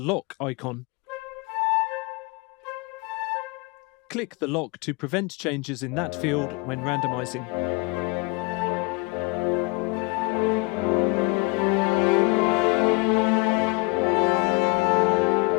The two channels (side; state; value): right; quieter; 27.6 dB